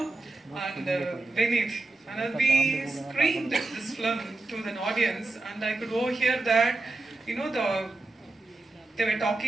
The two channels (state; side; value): quieter; left; 3.2 dB